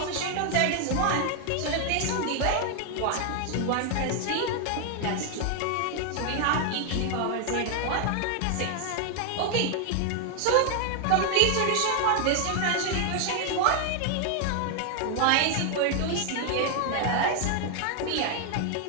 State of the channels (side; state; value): both; different; correlation 0.00